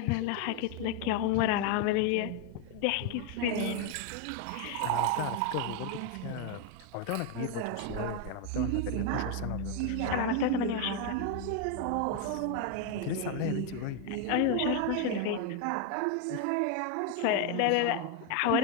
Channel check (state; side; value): different; both; correlation 0.01